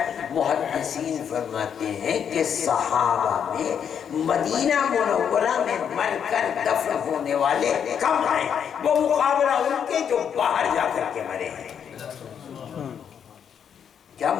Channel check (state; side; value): quieter; right; 8.0 dB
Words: محدثین فرماتے ہیں کہ صحابہ میں مدینہ منورہ میں مر کر دفن ہونے والے کم ہیں، وہ مقابلہ ان کے جو باہر جا کر کے مرے ہیں۔ کیا